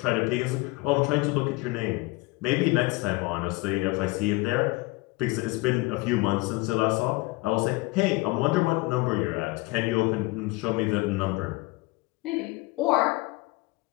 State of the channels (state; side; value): quieter; right; 23.0 dB